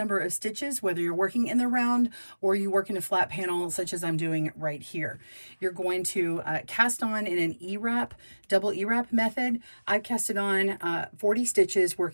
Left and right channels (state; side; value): inverted; both; correlation -1.00